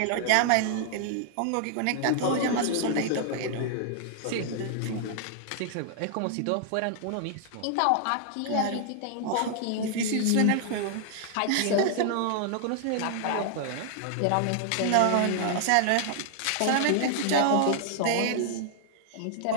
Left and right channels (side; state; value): both; different; correlation 0.00